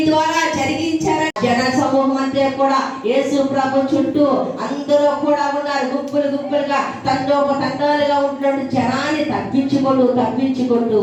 ద్వారా జరిగించారు. జన సమూహం అంతా కూడా యేసు ప్రభు చుట్టూ అందరూ కూడా ఉన్నారు. గుంపులు గుంపులుగా తండోపతండాలుగా ఉంటున్న జనాన్ని తప్పించుకుంటూ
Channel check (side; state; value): both; identical; correlation 1.00